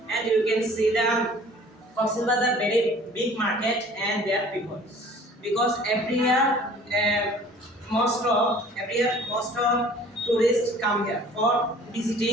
and you can see the Cox's Bazar very big market and their people, because every year most of tourists come here for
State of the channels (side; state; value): both; normal; correlation 0.50